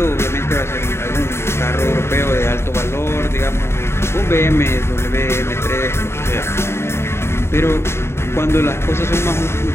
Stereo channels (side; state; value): right; late; 0.12 ms